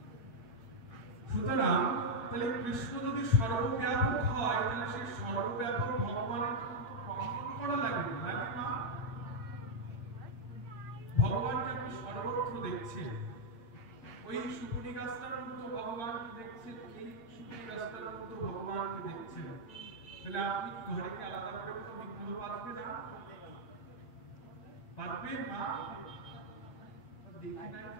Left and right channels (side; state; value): right; late; 8.8 ms